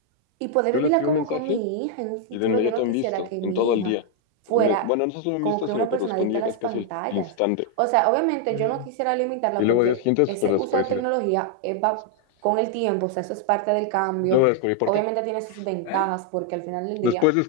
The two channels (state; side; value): different; both; correlation 0.00